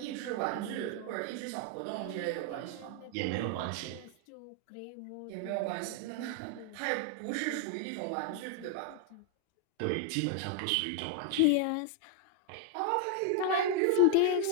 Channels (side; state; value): both; different; correlation 0.00